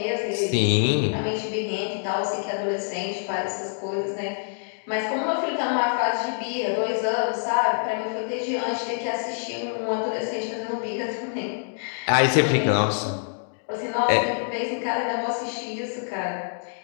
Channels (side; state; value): right; silent; digital silence